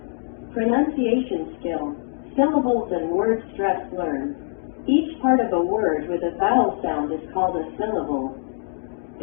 Pronunciation skill. Syllables and word stress learned. Each part of a word with a vowel sound is called a syllable.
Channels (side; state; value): right; silent; digital silence